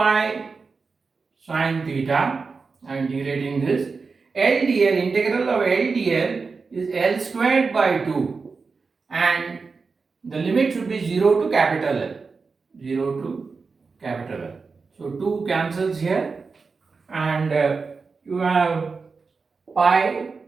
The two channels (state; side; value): quieter; left; 4.6 dB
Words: sine theta. I am integrating this. LdL, integral of LdL is L squared by 2, and the limit should be 0 to capital L. 0 to capital L. So 2 cancels here, and you have pi